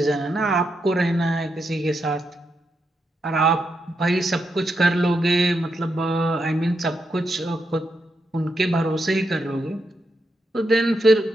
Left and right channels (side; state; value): both; normal; correlation 0.83